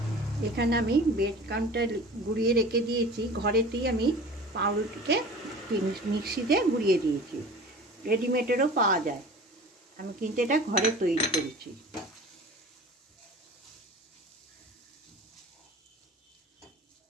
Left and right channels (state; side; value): normal; both; correlation 0.40